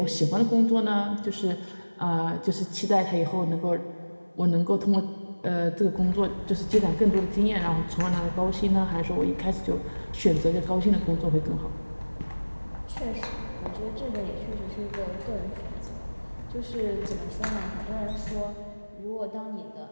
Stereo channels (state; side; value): inverted; both; correlation -1.00